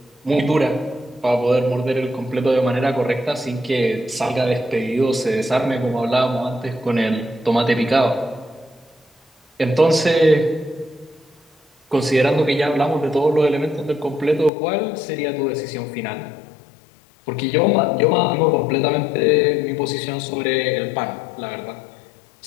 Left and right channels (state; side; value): drops out; right; at 14.5 s